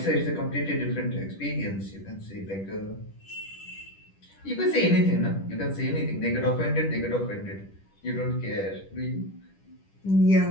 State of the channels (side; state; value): right; late; 10 ms